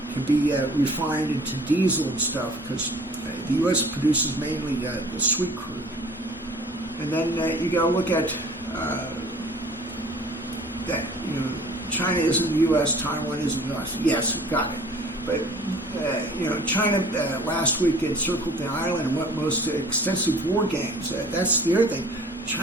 can be refined into diesel and stuff, because the U.S. produces mainly the sweet crude. And then you got to look at that. China isn't the U.S., Taiwan isn't the U.S. Yes, got it. But China last week encircled the island and went most extensive war games. That's the other thing.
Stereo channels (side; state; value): both; normal; correlation 0.49